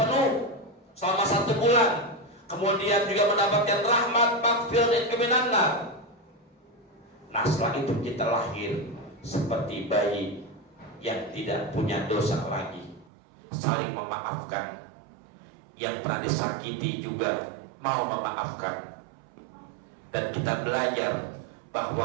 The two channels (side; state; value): left; drops out; at 13.1 s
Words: selama 1 bulan, kemudian juga mendapatkan rahmat, maghfirah dan kemenangan. Nah, setelah itu kita lahir seperti bayi yang tidak punya dosa lagi, saling memaafkan. Yang pernah disakiti juga mau memaafkan. Dan kita belajar